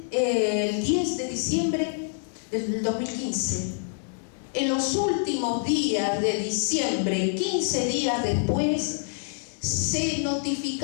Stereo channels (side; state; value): right; silent; digital silence